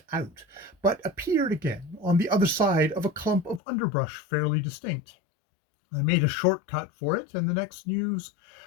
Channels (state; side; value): drops out; right; at 3.6 s